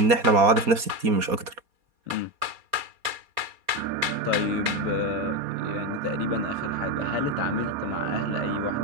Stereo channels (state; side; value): late; left; 4.3 ms